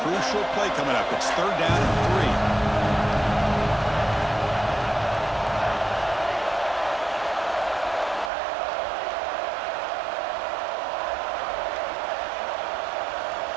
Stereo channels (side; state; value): left; drops out; at 8.3 s